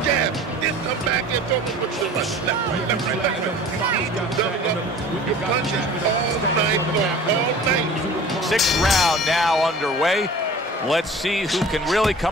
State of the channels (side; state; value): both; normal; correlation 0.43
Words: jab. Then come back and throw them with the left, right, left, right, left, right. You need to double up with your punches all night long, all night. 6th round now underway. Let's see who can really